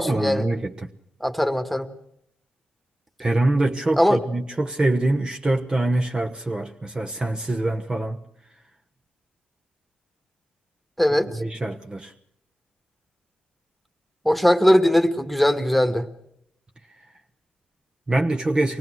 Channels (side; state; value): both; normal; correlation 0.96